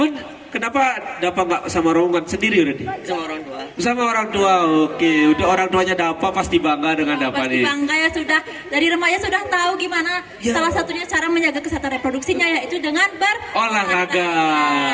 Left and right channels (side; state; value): both; identical; correlation 1.00